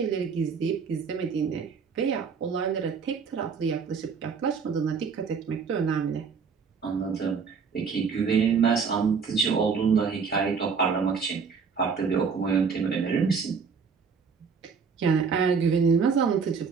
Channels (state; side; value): quieter; left; 5.7 dB